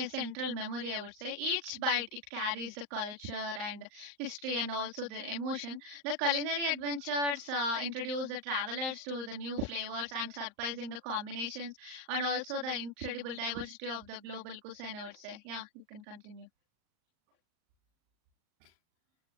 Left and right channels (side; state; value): left; late; 39 ms